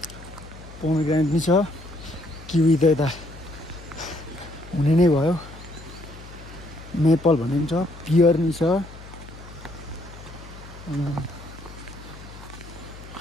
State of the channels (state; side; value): noise; left; hum, 16 dB below the sound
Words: पोमेग्रेनेट नि छ किवी त यता हुने नै भयो मेपल भन्ने पनि छ पियर नि छ